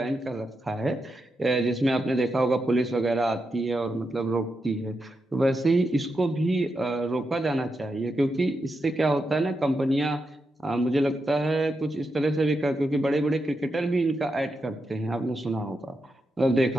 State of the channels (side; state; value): both; normal; correlation 0.86